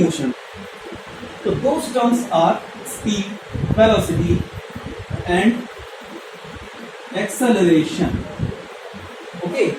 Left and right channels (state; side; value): identical; both; correlation 1.00